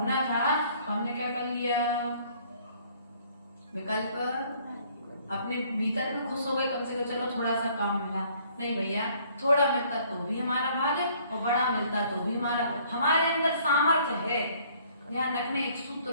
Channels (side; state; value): both; inverted; correlation -0.60